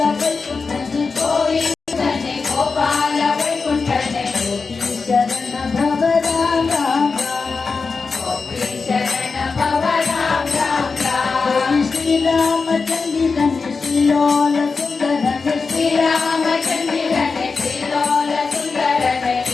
ವೈಕುಂಠನೆ ಗೋವಿಂದನೆ ಗೋಪಾಲ ವೈಕುಂಠನೆ ಗೋಪಿ ಶರಣ ಭವ ರಾಮ ಗೋಪಿ ಶರಣ ಭವ ರಾಮ ರಾಮ ಶ್ರೀರಾಮಚಂದಿರನೆ ಶ್ರೀಲೋಲ ಸುಂದರನೆ ಶ್ರೀರಾಮಚಂದಿರನೆ ಶ್ರೀಲೋಲ ಸುಂದರನೆ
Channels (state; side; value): quieter; right; 4.6 dB